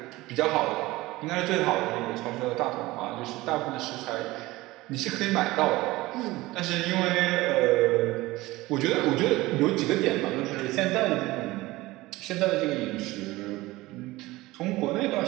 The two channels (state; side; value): quieter; left; 19.3 dB